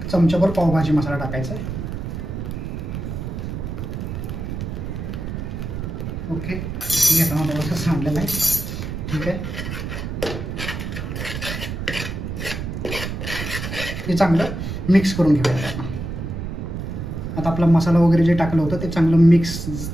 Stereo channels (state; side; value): noise; right; rumble, 5 dB below the sound